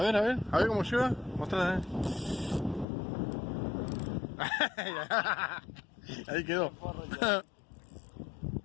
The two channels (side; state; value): right; drops out; at 2.9 s